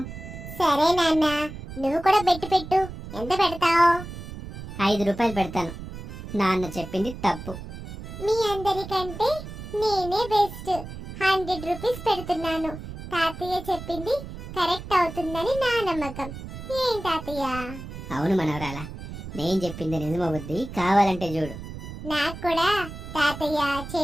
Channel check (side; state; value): right; noise; rumble, 11 dB below the sound